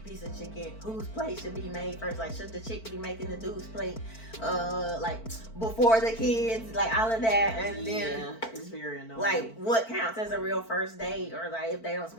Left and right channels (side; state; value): right; late; 4.5 ms